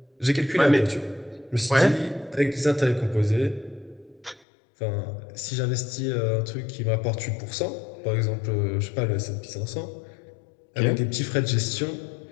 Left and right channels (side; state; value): right; drops out; at 4.5 s